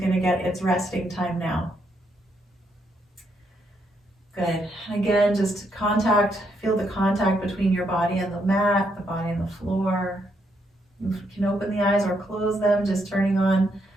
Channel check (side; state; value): both; normal; correlation 0.76